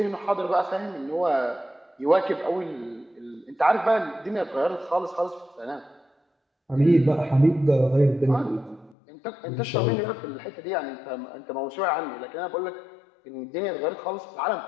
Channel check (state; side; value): drops out; right; at 9.0 s